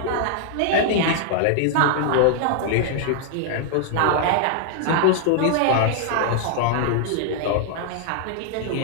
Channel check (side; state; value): both; different; correlation 0.00